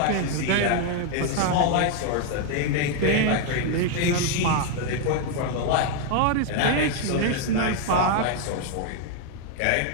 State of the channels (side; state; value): both; different; correlation 0.00